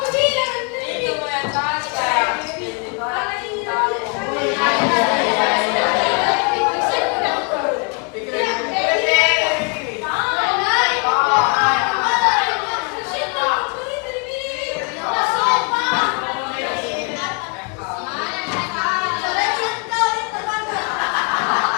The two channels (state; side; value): quieter; right; 35.3 dB